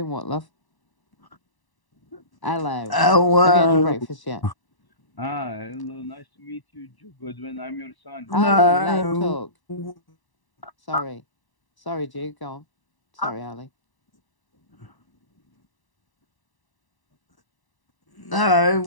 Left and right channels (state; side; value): late; right; 1.0 ms